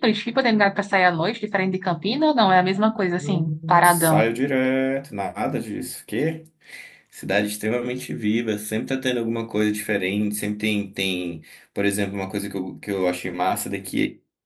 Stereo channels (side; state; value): both; identical; correlation 1.00